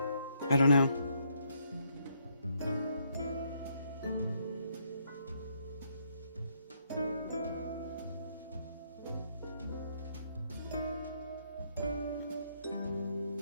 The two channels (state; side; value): inverted; both; correlation -0.73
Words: I don't know.